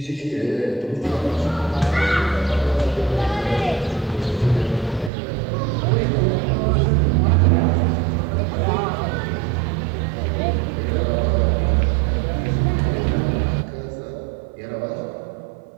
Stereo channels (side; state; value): left; drops out; at 5.1 s